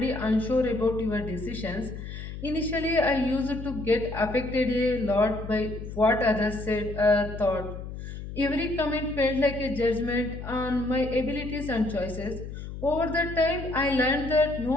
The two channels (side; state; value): left; noise; hum, 9 dB below the sound